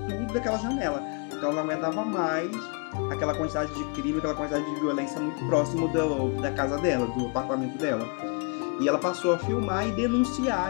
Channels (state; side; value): quieter; right; 34.6 dB